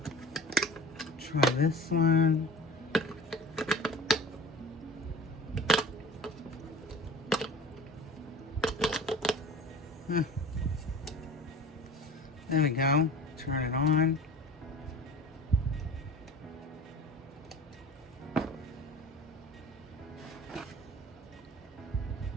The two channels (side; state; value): both; normal; correlation 0.39